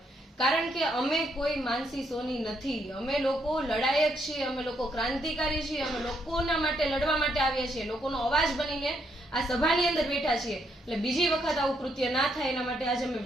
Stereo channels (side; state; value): both; normal; correlation 0.75